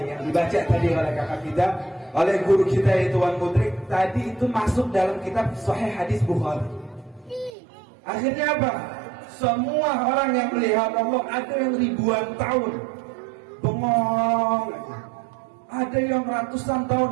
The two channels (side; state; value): left; drops out; at 7.5 s